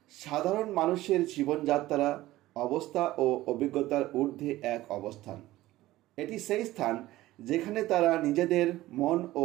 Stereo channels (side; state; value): left; quieter; 16.5 dB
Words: সাধারণ মানুষের জীবনযাত্রা, অবস্থা ও অভিজ্ঞতার ঊর্ধ্বে এক অবস্থান। এটি সেই স্থান যেখানে তারা নিজেদের মন ও